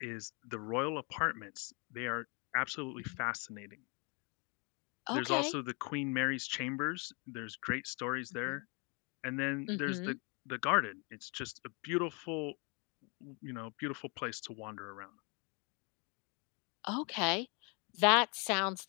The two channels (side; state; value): right; quieter; 33.0 dB